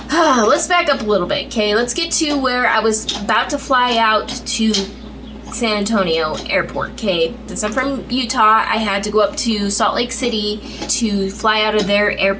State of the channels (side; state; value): both; identical; correlation 1.00